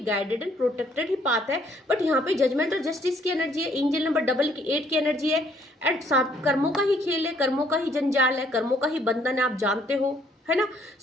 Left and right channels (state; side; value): normal; both; correlation 0.65